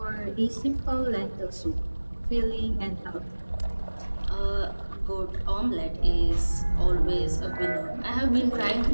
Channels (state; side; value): inverted; both; correlation -1.00